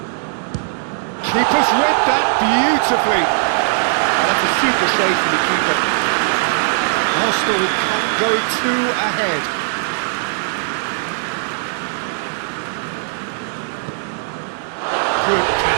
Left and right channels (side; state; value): left; silent; 67 dB below the other